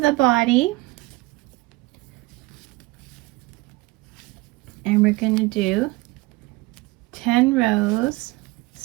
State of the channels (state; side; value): quieter; left; 21.8 dB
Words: body. And we're going to do 10 rows,